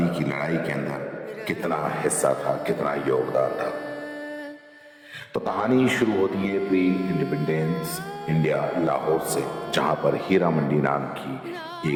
کی لڑائی کے اندر کتنا حصہ تھا، کتنا یوگدان تھا۔ تو کہانی شروع ہوتی ہے پری انڈیپینڈنس انڈیا لاہور سے، جہاں پر ہیرا منڈی نام کی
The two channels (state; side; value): identical; both; correlation 1.00